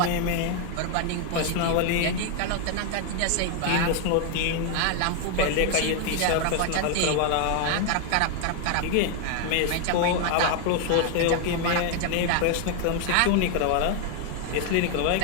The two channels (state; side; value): different; both; correlation 0.01